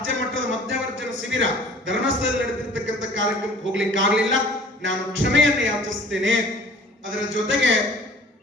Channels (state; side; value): normal; both; correlation 0.49